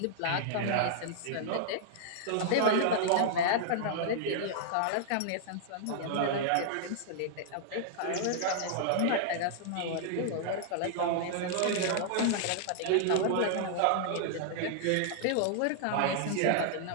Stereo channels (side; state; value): both; different; correlation -0.01